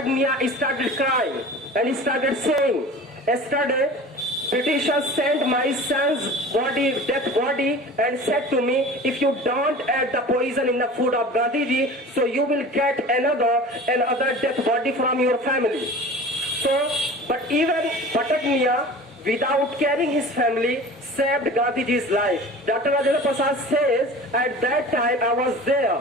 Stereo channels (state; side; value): normal; both; correlation 0.38